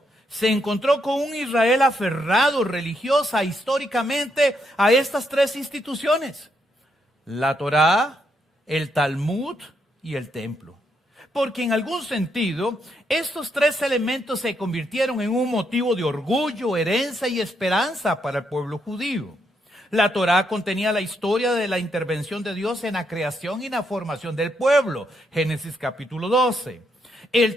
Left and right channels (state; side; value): normal; both; correlation 0.78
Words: se encontró con un Israel aferrado religiosa históricamente a estas 3 instituciones: la Torá, el Talmud y el templo. Porque en algún sentido, estos 3 elementos se convirtieron en un motivo de orgullo, herencia y esperanza para el pueblo judío. La Torá contenía la historia de la intervención de Dios en la creación y la formación del pueblo. Génesis capítulo 12.